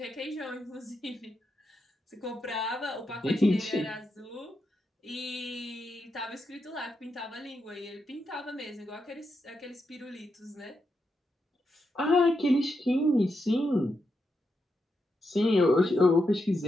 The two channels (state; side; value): normal; both; correlation 0.85